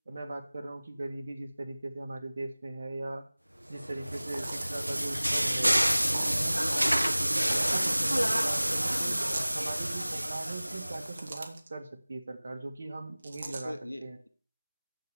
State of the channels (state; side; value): inverted; both; correlation -0.99